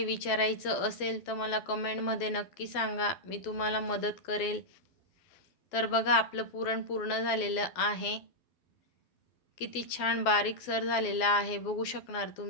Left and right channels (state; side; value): late; right; 12 ms